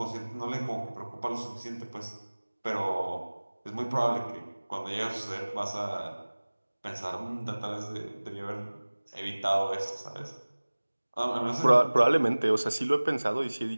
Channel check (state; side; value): inverted; both; correlation -1.00